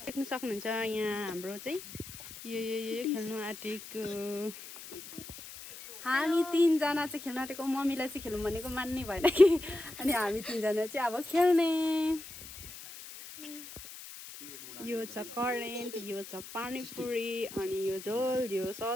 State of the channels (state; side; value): noise; left; hiss, 14 dB below the sound